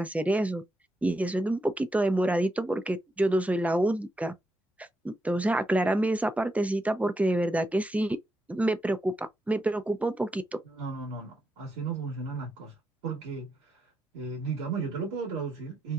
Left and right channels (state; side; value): normal; both; correlation 0.84